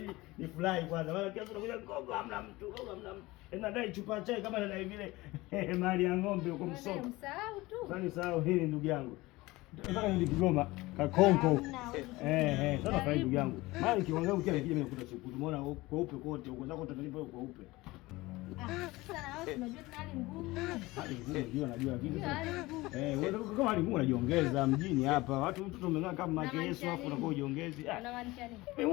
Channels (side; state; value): right; quieter; 20.4 dB